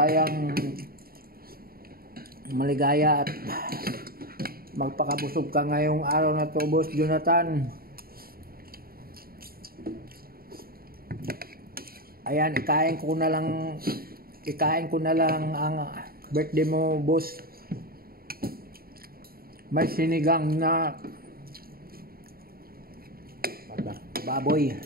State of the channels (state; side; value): late; left; 0.43 ms